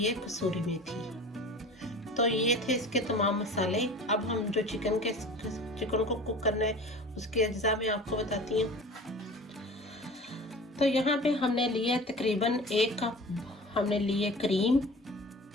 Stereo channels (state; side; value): normal; both; correlation 0.39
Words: कसूरी मेथी। तो ये थे इसके तमाम मसाले। अब हम जो चिकन को कुक करना है उसके अज्जा में आपको बताती हूँ। तो यहाँ पे हमने लिए तकरीबन 1 कप हमने लिए क्रीम,